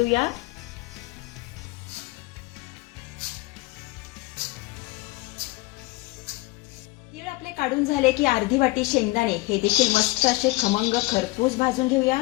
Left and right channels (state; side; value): quieter; right; 21.4 dB